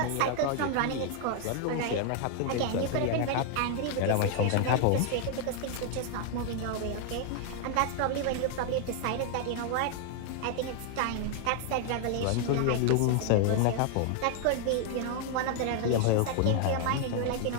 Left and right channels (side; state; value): both; different; correlation 0.00